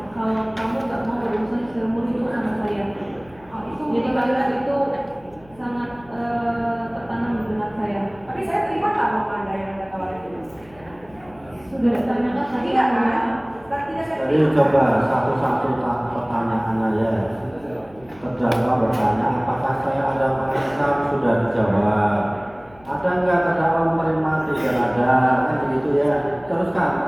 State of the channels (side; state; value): left; noise; hum, 26 dB below the sound